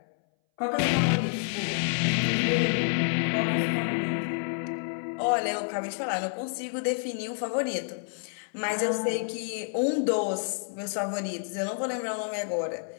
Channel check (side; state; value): right; silent; 59 dB below the other